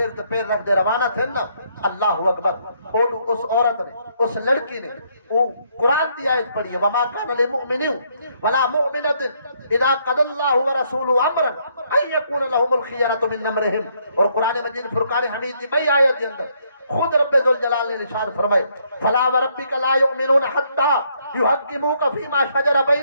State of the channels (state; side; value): inverted; both; correlation -0.71